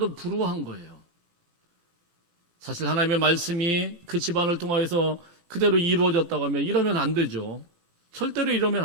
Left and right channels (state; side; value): late; left; 17 ms